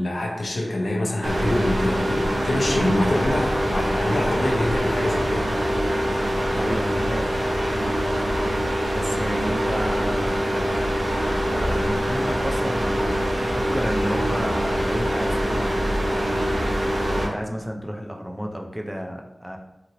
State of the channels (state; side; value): normal; both; correlation 0.96